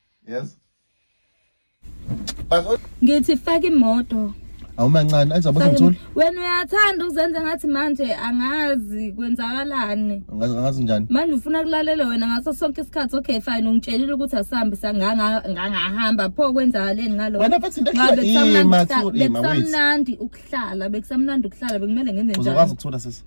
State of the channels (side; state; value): both; inverted; correlation -1.00